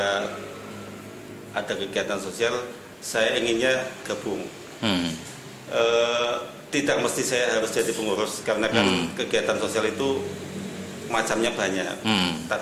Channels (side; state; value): both; identical; correlation 1.00